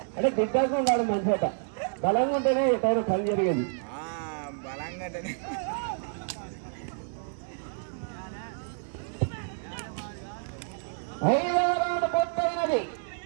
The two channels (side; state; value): left; silent; digital silence